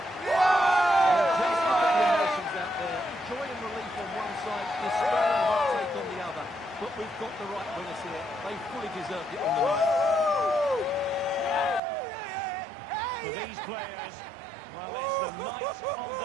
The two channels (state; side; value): drops out; left; at 11.8 s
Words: Just look at the emotions out there. Joy and relief on one side, despair and heartache on the other. But we've got the right winners here. They fully deserved it on the night. For these players, well, it's the night of